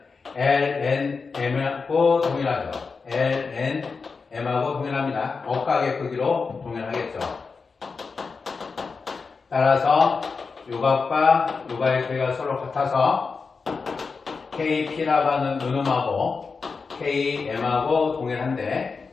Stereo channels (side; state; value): right; quieter; 4.8 dB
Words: LNM하고 동일하죠. LNM하고 동일합니다. 억각의 크기로 동일하겠죠. 따라서 요 각과 요 각의 크기가 서로 같아서 KP라고 하는 요 놈하고 KM하고 동일한데